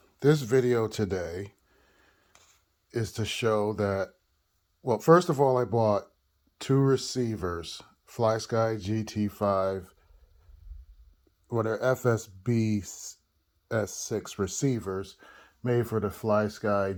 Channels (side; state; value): both; identical; correlation 1.00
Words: this video today is to show that, well, first of all, I bought two receivers, Flysky GT5, they're FS-BS6 receivers made for the Flysky